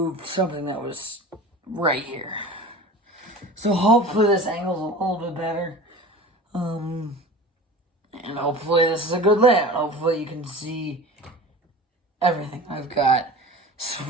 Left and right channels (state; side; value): normal; both; correlation 0.36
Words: something that was right here. So hopefully this angle's a little bit better. And hopefully this is a good layout. Hopefully you can see everything I've got